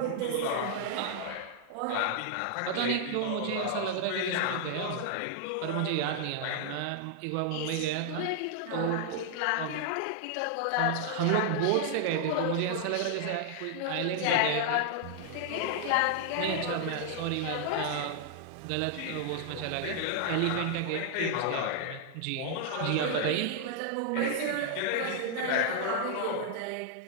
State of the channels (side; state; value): both; different; correlation 0.00